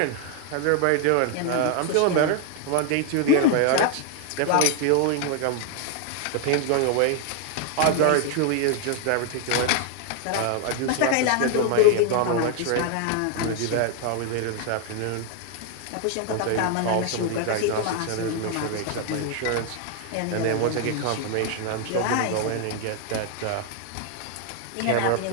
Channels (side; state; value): both; different; correlation 0.00